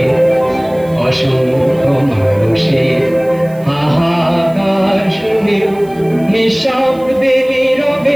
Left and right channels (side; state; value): right; noise; hiss, 26 dB below the sound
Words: অসংখ্য মানুষের হাহাকার শুনে নিঃশব্দে